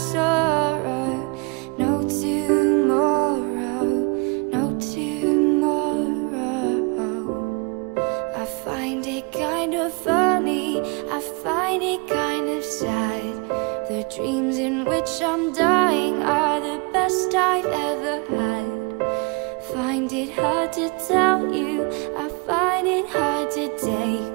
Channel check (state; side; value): quieter; left; 31.1 dB